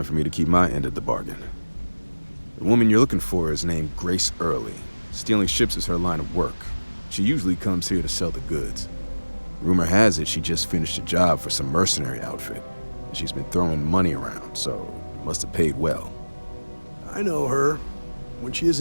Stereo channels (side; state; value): both; inverted; correlation -1.00